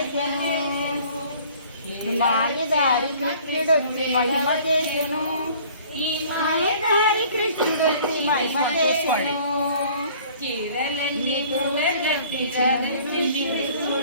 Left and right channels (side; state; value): both; inverted; correlation -0.52